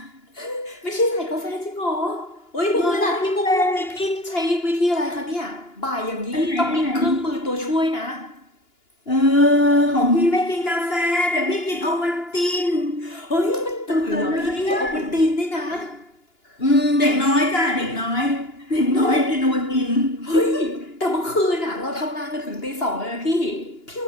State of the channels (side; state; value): right; late; 2.9 ms